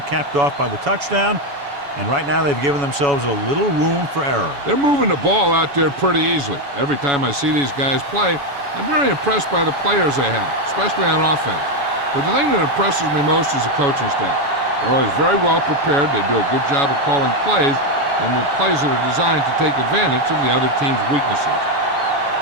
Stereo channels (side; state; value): left; late; 7.1 ms